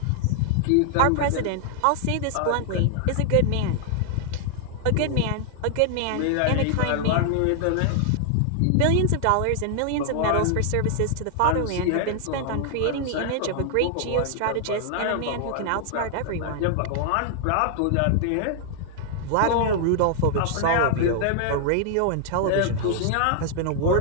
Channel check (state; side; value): different; both; correlation 0.00